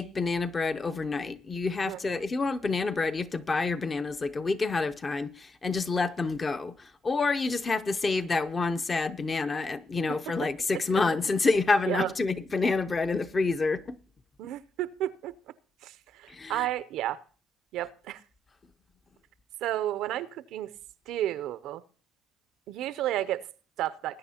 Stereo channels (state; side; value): normal; both; correlation 0.78